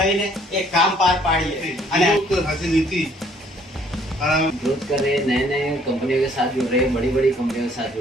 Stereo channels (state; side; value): normal; both; correlation 0.61